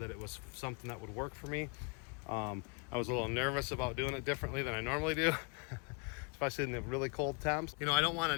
it was something that would work for me. I was a little nervous about doing it differently than I normally do, especially in the really cold temps. You know, I don't want to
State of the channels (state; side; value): quieter; right; 32.2 dB